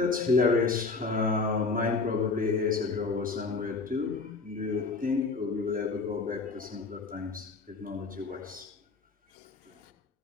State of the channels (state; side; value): quieter; right; 4.2 dB